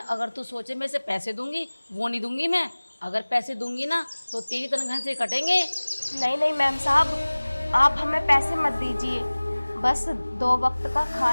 तू सोचे मैं इसे पैसे दूंगी, वो नहीं दूंगी मैं। अगर पैसे दूंगी ना तो तेरी तनख्वाह से कटेंगे। नहीं नहीं मैम साहब, आप हमें पैसे मत दीजिए। बस 2 वक्त का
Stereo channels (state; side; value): inverted; both; correlation -1.00